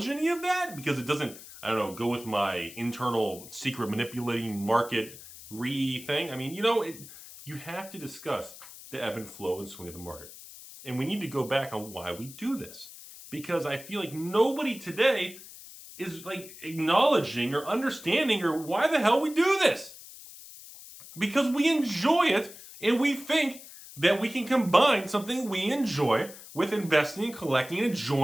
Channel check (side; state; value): left; noise; hiss, 16 dB below the sound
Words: any of that? Because it doesn't, go with my internal secret manipulating market thing. I mean, you have to discuss the ebb and flow and swing of the market. And we need to go back on why we do this. Because I feel like nobody today is acknowledging or understanding or why the hell we do this. Because we enjoy it and we think that we can combine something we enjoy with investing and collecting and